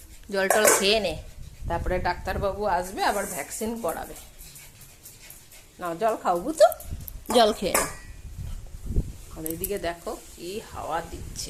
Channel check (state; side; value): identical; both; correlation 1.00